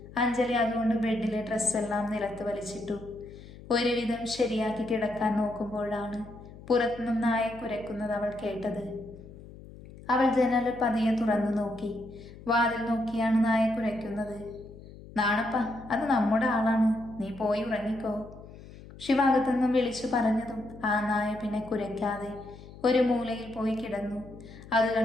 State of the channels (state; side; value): noise; left; hum, 17 dB below the sound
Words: അഞ്ജലി അതുകൊണ്ട് ബെഡിലെ ഡ്രസ്സെല്ലാം നിലത്ത് വലിച്ചിട്ടു. ഒരുവിധം ശരിയാക്കി കിടക്കാൻ നോക്കുമ്പോഴാണ് പുറത്തുനിന്നും നായ കുരയ്ക്കുന്നത് അവൾ കേട്ടത്. അവൾ ജനൽ പതിയെ തുറന്നു നോക്കി. വാതിൽ നോക്കിയാണ് നായ കുരയ്ക്കുന്നത്. നാണപ്പ, അത് നമ്മുടെ ആളാണ്, നീ പോയി ഉറങ്ങിക്കോ. ശിവാകത്തുനിന്നും വിളിച്ചു പറഞ്ഞതും ആ നായ പിന്നെ കുരയ്ക്കാതെ ഒരു മൂലയിൽ പോയി കിടന്നു. അത്